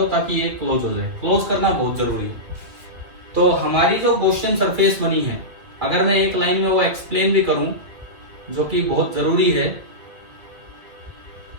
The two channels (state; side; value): late; left; 2.3 ms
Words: ताकि ये क्लोज हो जाए। क्लोज करना बहुत जरूरी है। तो हमारी जो गॉसियन सरफेस बनी है, अगर मैं एक लाइन में वो एक्सप्लेन भी करूं जो कि बहुत जरूरी है,